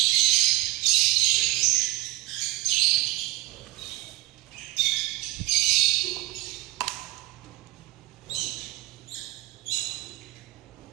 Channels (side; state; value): left; quieter; 18.5 dB